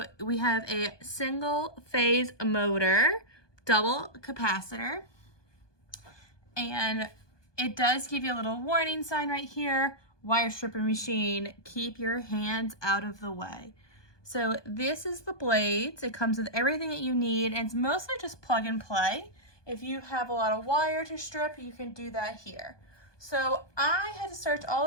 we have a single phase motor, double capacitor, and it does give you a little warning sign right here, wire stripper machine, keep your hands out of the way. So this is the blades. It comes with everything that you need, and it's mostly just plug and play. If you have a lot of wire to strip, you can do that here. So I had to search all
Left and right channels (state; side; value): late; right; 1.2 ms